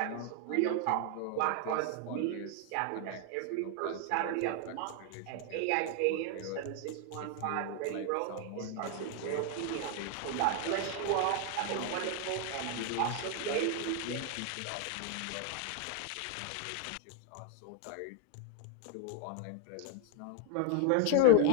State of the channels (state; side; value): different; both; correlation 0.01